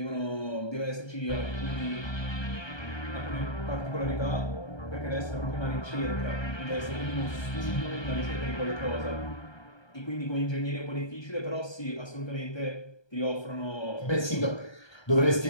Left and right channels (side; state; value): right; late; 1.3 ms